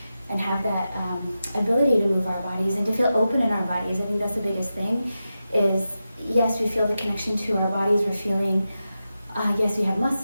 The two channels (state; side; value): inverted; both; correlation -0.91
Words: and have that ability to move our bodies and to feel open in our bodies. I think that's the biggest thing is, yes, we feel the connection to our bodies. We're feeling, yes, we have